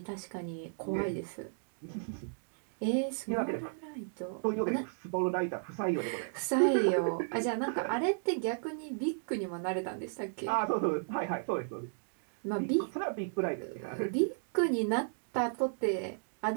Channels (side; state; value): left; silent; digital silence